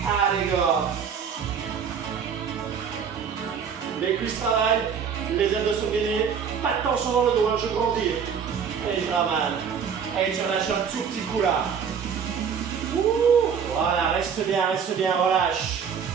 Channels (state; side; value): quieter; left; 7.1 dB